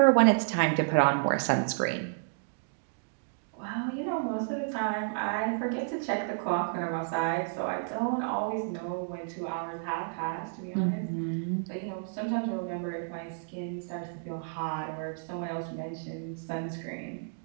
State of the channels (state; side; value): silent; left; digital silence